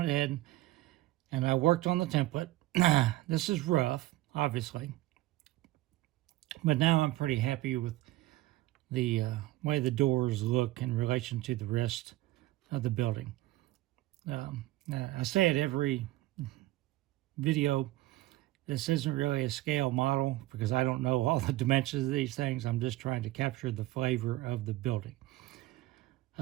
ahead and I worked on the template. This is rough, obviously, but now I'm pretty happy with the way the doors look in relation to the rest of the building. I say it every video, this isn't really a scale model because I don't know all the dimensions of these things. I'm just trying to capture the flavor of the building.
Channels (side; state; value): left; quieter; 17.1 dB